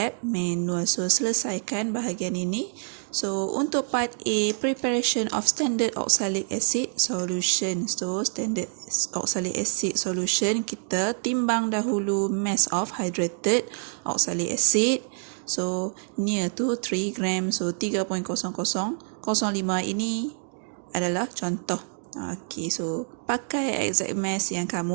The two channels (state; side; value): silent; left; 61 dB below the other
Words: manual. So, selesaikan bahagian ini. So, untuk part A, preparation of standard oxalic acid solution. So, standard oxalic acid solution, kita timbang dahulu mass of hydrated oxalic acid. So, near to 3 gram. So, 3.0005 ini adalah contoh. Okay, so pakai exact mass yang